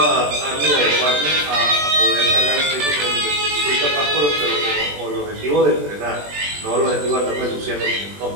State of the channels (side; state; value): left; late; 20 ms